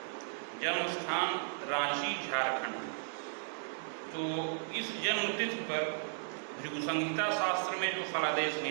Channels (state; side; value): silent; left; digital silence